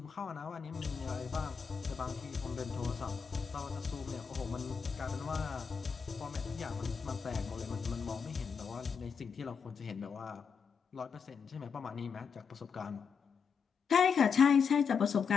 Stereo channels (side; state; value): right; quieter; 6.2 dB